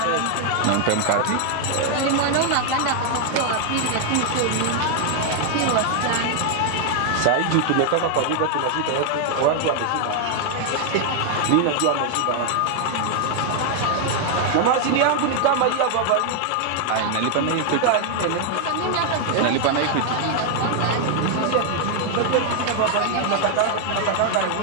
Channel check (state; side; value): different; both; correlation 0.00